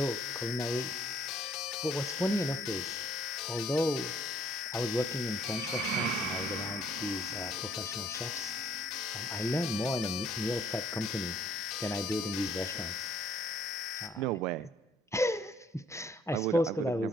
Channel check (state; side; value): normal; both; correlation 0.63